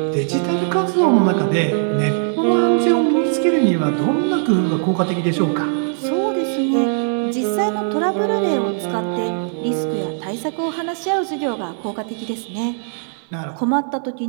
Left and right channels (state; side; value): silent; left; digital silence